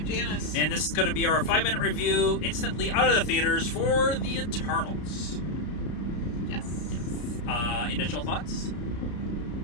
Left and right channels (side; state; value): right; late; 33 ms